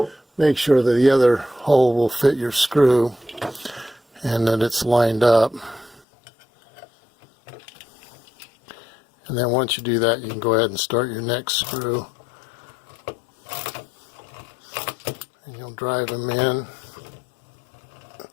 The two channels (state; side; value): drops out; right; at 6.0 s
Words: make sure that the other hole will fit your screw and that it's lined up. And then once you do that, you can go ahead and start your next screw. And you'll drive them in.